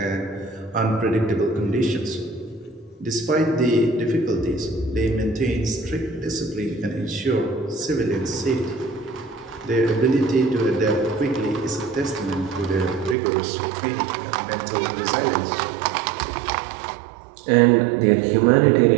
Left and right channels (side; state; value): left; drops out; at 13.2 s